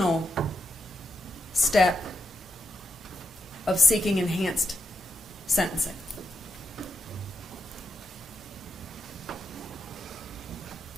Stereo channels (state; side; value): normal; both; correlation 0.84